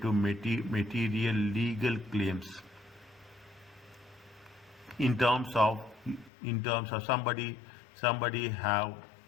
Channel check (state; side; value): drops out; right; at 6.3 s